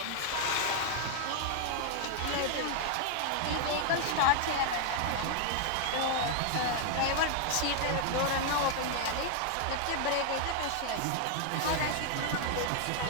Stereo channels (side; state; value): both; different; correlation 0.00